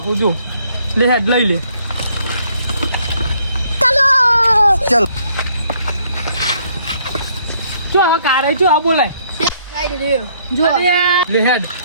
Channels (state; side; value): inverted; both; correlation -0.66